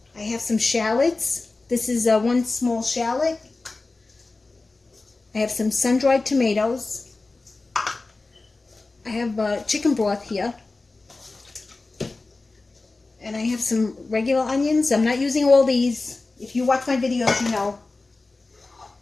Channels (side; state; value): right; quieter; 3.5 dB